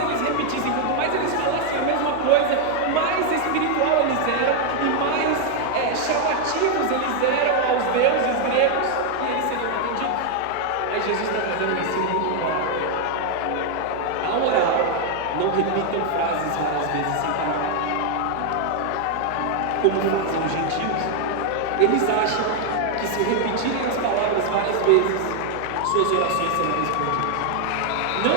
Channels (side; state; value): both; different; correlation 0.00